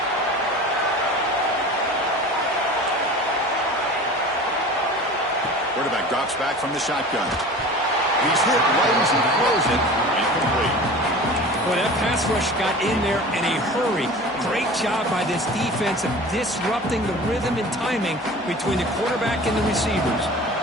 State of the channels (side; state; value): both; normal; correlation 0.38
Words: Quarterback drops back from the shotgun. He's hit right as he throws it. Incomplete. Boy, that pass rush got in there in a hurry. Great job by this defense of disrupting the rhythm and timing between the quarterback and the receivers.